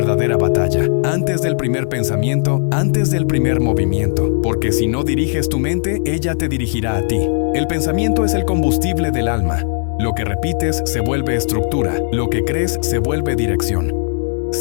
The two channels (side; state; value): right; silent; digital silence